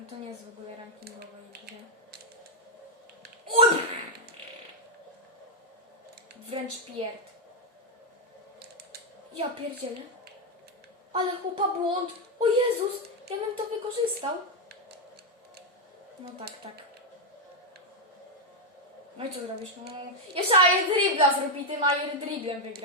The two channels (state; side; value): normal; both; correlation 0.02